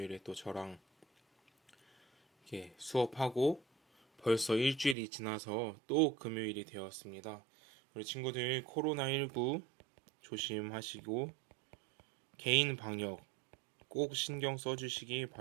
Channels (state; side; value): drops out; left; at 5.0 s